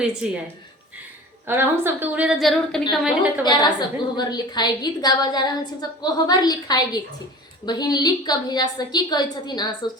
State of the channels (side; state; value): both; normal; correlation 0.39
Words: छे। और हम सबके उड़े तो जरूर कनी कमेंट करके प्यारा बता सब देब। कोहबर लिखाए गीत गावा जा रहल छी। सब कोहबर लिखाए गीत छी, बहिन लिख के भेजा सकी कहै छथिन, अहाँ सब